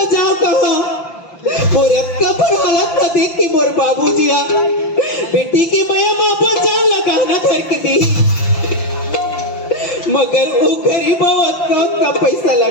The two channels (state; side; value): late; right; 5.8 ms